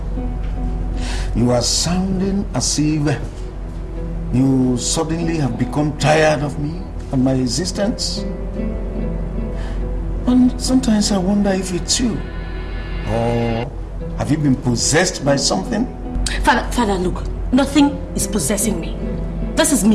you are sounding as if you suddenly have become tired of me and my existence. And sometimes I wonder if it's you. Or have you been possessed by something? Father, look, nothing is possessing me. This is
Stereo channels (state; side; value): identical; both; correlation 1.00